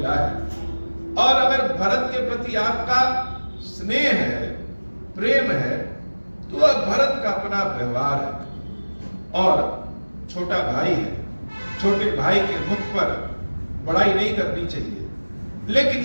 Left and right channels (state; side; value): inverted; both; correlation -1.00